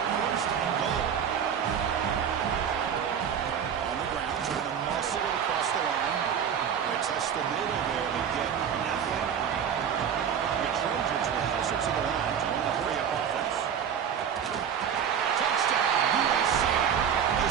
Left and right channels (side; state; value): left; quieter; 8.1 dB